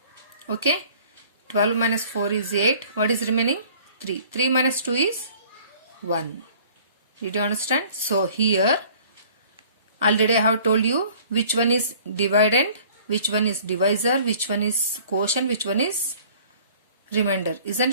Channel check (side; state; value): both; inverted; correlation -0.52